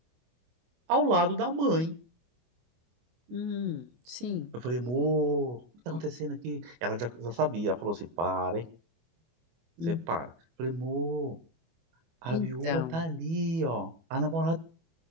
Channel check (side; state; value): left; late; 24 ms